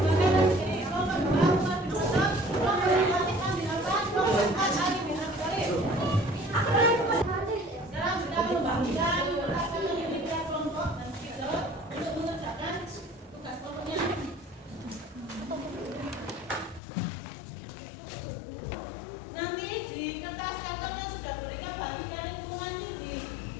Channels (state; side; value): drops out; right; at 16.8 s